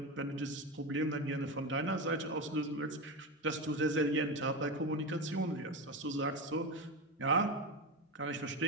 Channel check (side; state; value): both; normal; correlation 0.19